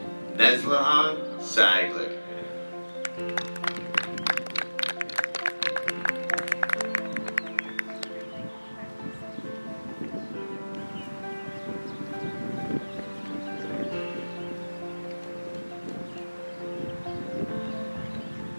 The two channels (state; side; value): inverted; both; correlation -1.00